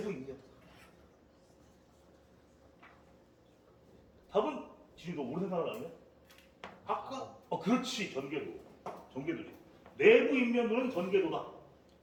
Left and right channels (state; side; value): identical; both; correlation 1.00